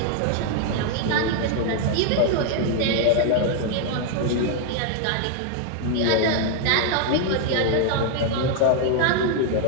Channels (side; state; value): both; different; correlation 0.00